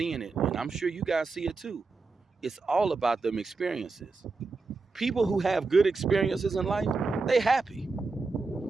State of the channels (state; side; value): quieter; left; 4.0 dB